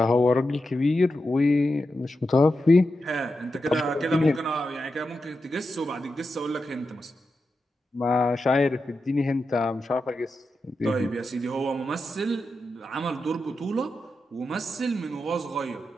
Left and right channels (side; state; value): both; normal; correlation 0.89